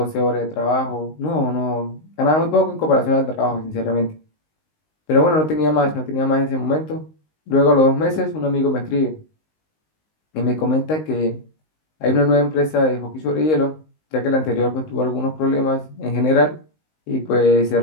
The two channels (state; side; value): late; right; 19 ms